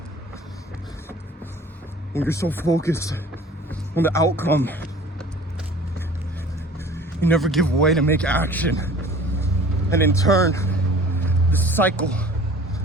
When you're so focused on the outcome, you never give way to make action. And in turn, the cycle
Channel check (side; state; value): both; normal; correlation 0.46